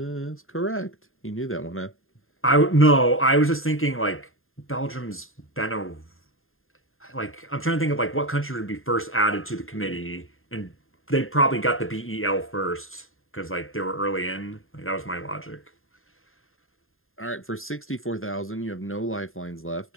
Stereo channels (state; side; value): late; right; 0.60 ms